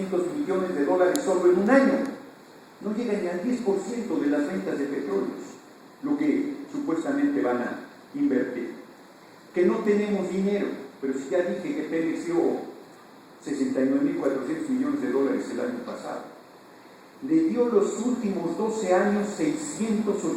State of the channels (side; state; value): both; identical; correlation 1.00